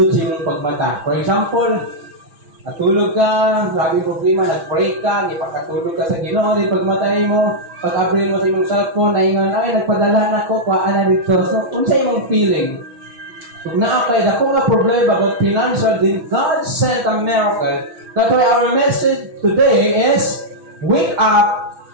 sa iyong pagmata. For example, natulog ka, lagi problema, nag-pray ka, ipakatulog ka sa Ginoo, di pagmatay mo, pag-abril mo sa imong cellphone, naingon, ay, nagpadala na ko, kuhaan na dito. So, kung sa imong feeling, kung naakay na kung nga problema about financial, then God sent a miracle. That's why our message today is, wake up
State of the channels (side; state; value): left; late; 6.1 ms